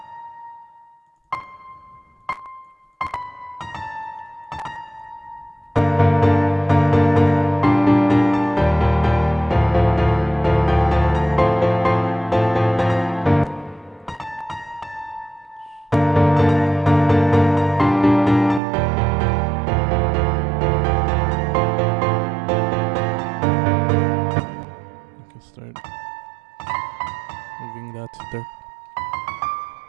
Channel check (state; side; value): drops out; left; at 18.6 s